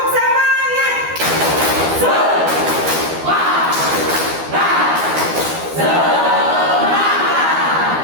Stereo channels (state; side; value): late; left; 12 ms